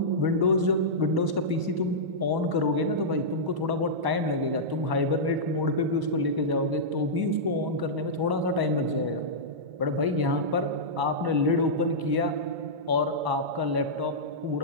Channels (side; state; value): left; late; 1.0 ms